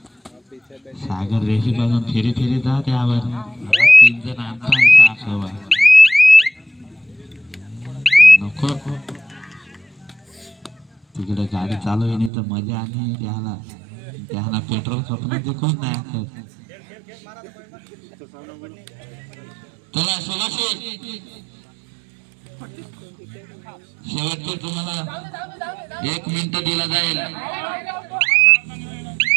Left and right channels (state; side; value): drops out; left; at 12.3 s